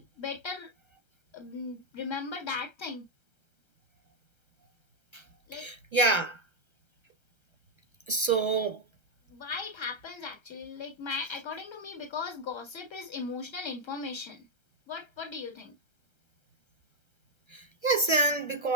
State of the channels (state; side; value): late; right; 1.3 ms